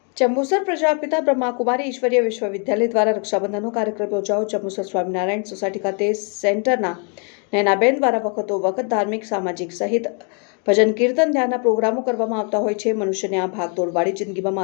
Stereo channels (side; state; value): right; quieter; 39.1 dB